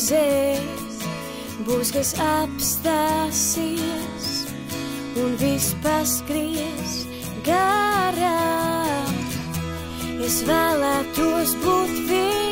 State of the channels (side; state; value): both; identical; correlation 1.00